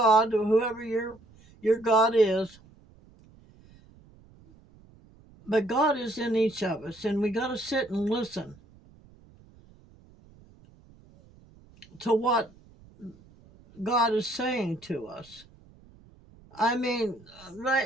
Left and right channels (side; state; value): right; noise; rumble, 26 dB below the sound